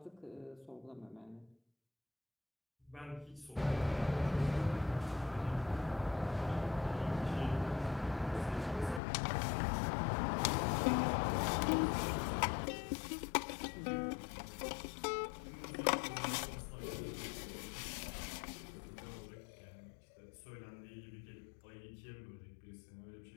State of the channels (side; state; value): right; drops out; at 9.0 s